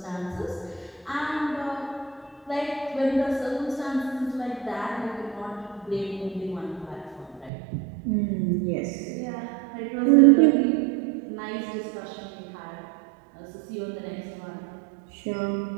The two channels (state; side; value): drops out; left; at 7.5 s